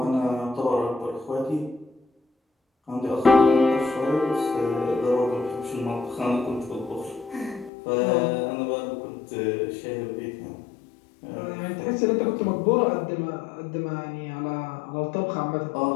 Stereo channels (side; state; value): right; drops out; at 7.7 s